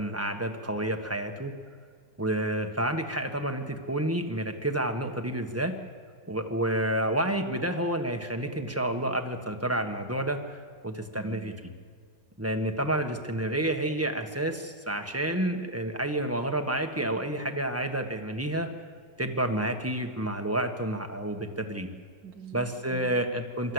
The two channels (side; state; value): both; normal; correlation -0.05